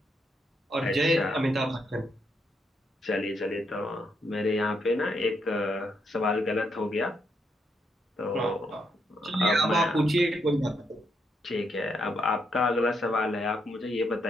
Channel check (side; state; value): both; normal; correlation 0.78